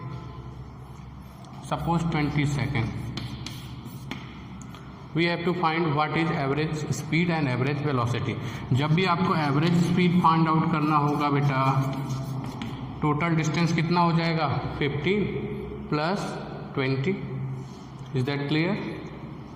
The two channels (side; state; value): both; identical; correlation 1.00